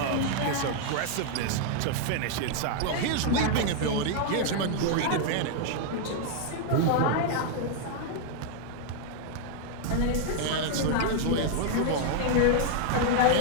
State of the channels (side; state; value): both; different; correlation 0.00